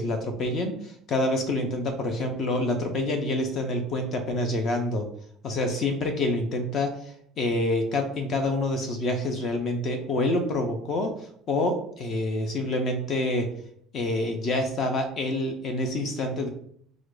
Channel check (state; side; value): normal; both; correlation 0.42